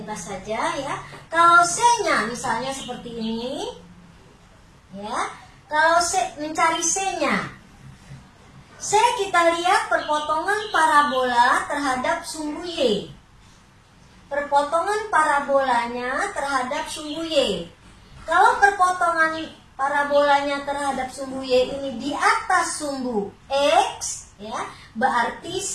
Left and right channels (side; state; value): both; identical; correlation 1.00